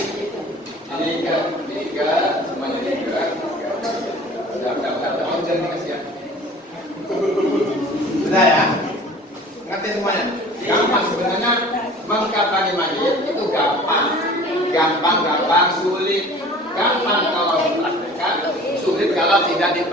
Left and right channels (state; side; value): normal; both; correlation 0.45